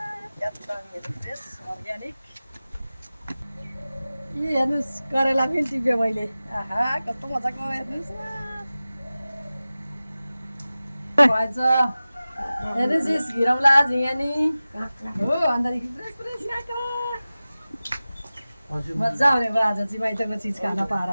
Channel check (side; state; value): both; inverted; correlation -0.96